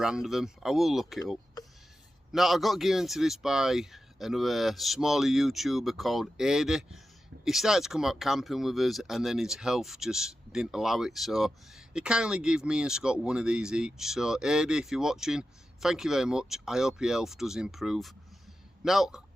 of them. I will look it up. Now I got given to this by another smaller YouTuber called Adi. He started to come out camping with us and then his health just didn't allow it. So he kindly gave me and Scott one of these each. So Adi, if you're watching, thank you very much. I hope your health does improve. Now,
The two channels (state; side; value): normal; both; correlation 0.91